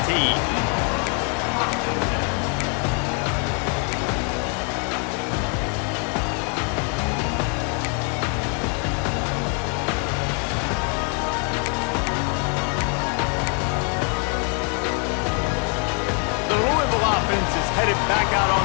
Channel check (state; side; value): quieter; right; 39.2 dB